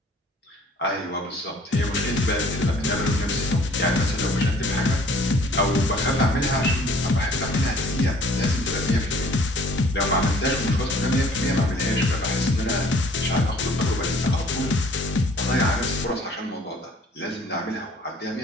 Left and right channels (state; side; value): normal; both; correlation 0.55